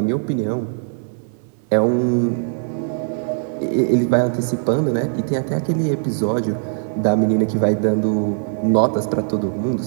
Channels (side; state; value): left; silent; digital silence